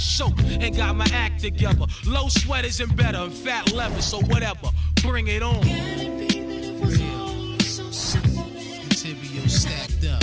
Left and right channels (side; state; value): both; identical; correlation 1.00